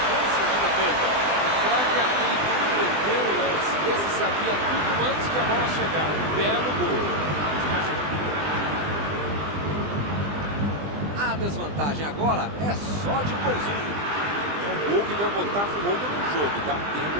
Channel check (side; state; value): left; late; 20 ms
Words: chances de defesa. O craque atento preveu o lance. Esse sabia tudo antes que a bola chegar. Belo gol. A desvantagem agora é só de um golzinho. É um gol que vai botar fogo no jogo. Dá tempo